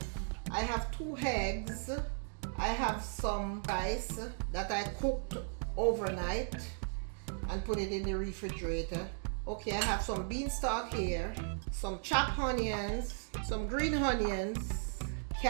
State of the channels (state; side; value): silent; left; 54 dB below the other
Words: I have 2 eggs. I have some rice that I cooked overnight and put it in the refrigerator. Okay, I have some beanstalk here, some chopped onions, some green onions,